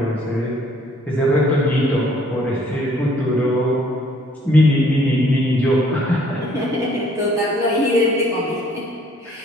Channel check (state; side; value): normal; both; correlation 0.61